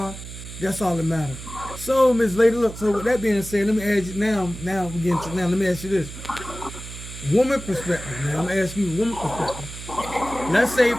that's all that matters. So, Miss Lady, look. So with that being said, let me ask you now. Let me ask you this: woman perspective. Now I'm gonna ask you woman perspective. Let's say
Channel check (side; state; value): right; noise; hum, 12 dB below the sound